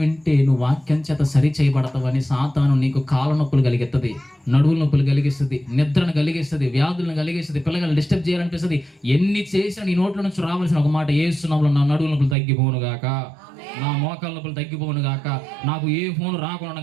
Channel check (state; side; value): drops out; left; at 12.4 s